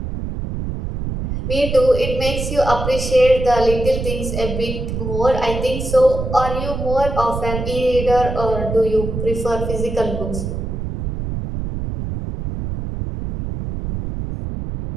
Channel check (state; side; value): noise; right; rumble, 5 dB below the sound